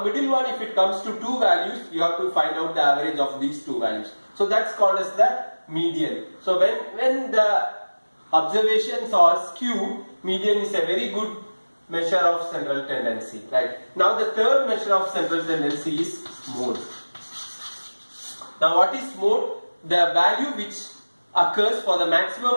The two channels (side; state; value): both; inverted; correlation -1.00